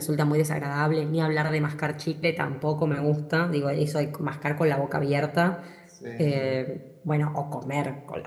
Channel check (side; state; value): both; identical; correlation 1.00